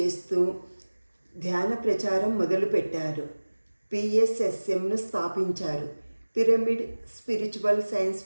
ధ్యాన ప్రచారం మొదలుపెట్టారు. పిఎస్ఎస్ఎంను స్థాపించారు. పిరమిడ్ స్పిరిచువల్ సైన్స్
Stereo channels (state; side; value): inverted; both; correlation -1.00